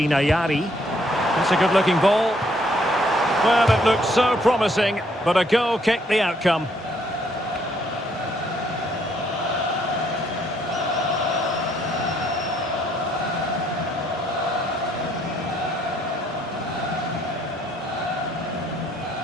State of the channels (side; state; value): both; normal; correlation 0.68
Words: Ayari. That's a good-looking ball. Well, it looked so promising, but a goal kicked the outcome.